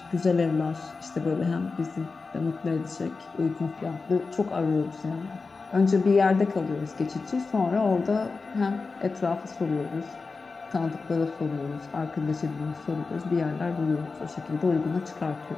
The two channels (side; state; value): right; quieter; 4.2 dB